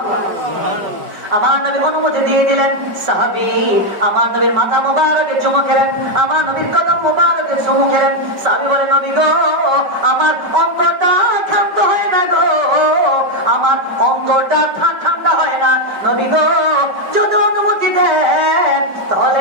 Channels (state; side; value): late; left; 5.2 ms